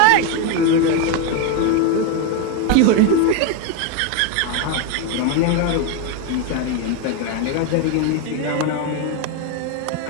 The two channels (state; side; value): different; both; correlation 0.02